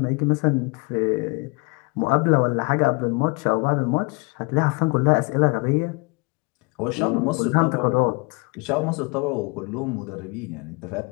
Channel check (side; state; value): right; quieter; 29.2 dB